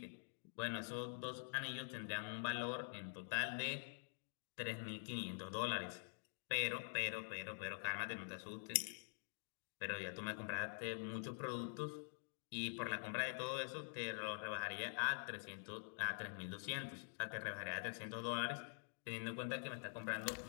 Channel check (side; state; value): right; silent; digital silence